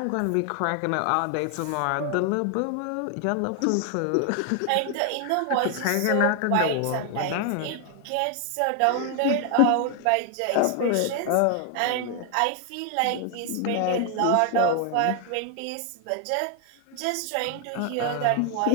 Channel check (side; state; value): both; different; correlation 0.00